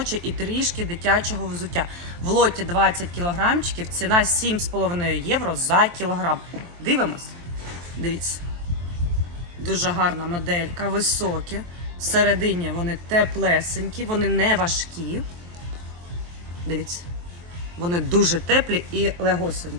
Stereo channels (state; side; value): late; left; 23 ms